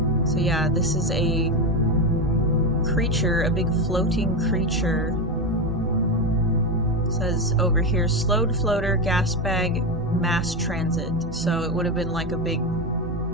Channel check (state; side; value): normal; both; correlation 0.13